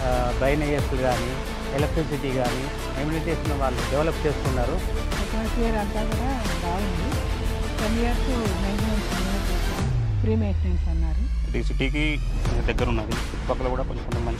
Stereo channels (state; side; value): identical; both; correlation 1.00